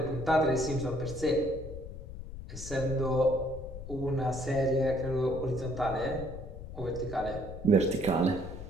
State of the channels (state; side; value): noise; left; rumble, 10 dB below the sound